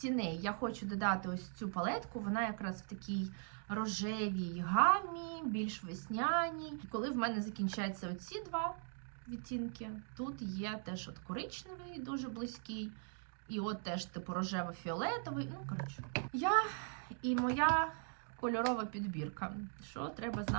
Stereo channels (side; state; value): left; silent; 51 dB below the other